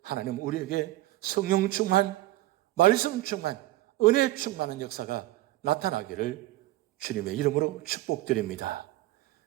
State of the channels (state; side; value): quieter; left; 17.2 dB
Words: 하나님 우리에게 성령 충만, 말씀 충만, 은혜 충만한 역사가 나타나기를 주님의 이름으로 축복드립니다.